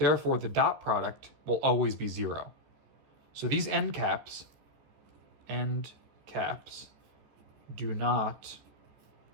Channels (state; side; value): late; left; 14 ms